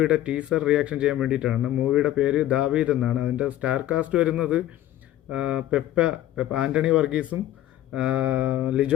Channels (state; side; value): quieter; right; 13.4 dB